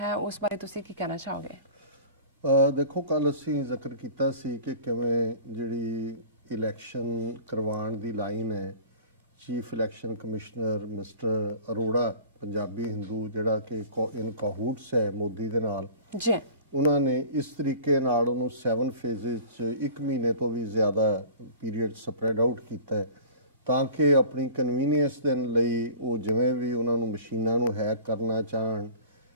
ਉਸ ਬਾਰੇ ਤੁਸੀਂ ਕੀ ਕਹਿਣਾ ਚਾਹੋਗੇ? देखो, कल असी जिक्र किया सी कि किवें जिहड़ी इलैक्शन करवाउण दी लाइन है, chief election commissioner mister Arora Punjabi Hindu जिहड़ा कि इन काहूट्स है मोदी दे नाल जी, उन्होंने इस तरीके नाल उहनूं 7 फेजेस च 1 महीने तो भी ज़्यादा पीरीयड स्प्रैड आउट किया है तां कि अपनी कन्वीनियंस दे लई वो जिवें भी उन्होंने मशीनां नूं हैक करना चाहण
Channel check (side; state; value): both; inverted; correlation -0.42